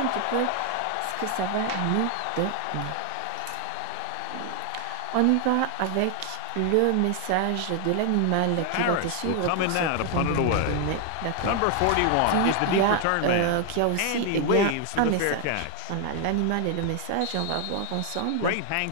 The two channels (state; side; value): different; both; correlation 0.00